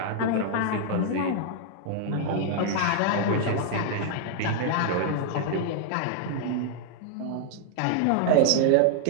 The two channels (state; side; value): different; both; correlation 0.00